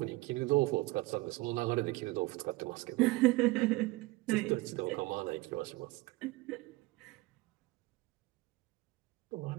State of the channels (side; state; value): left; quieter; 20.8 dB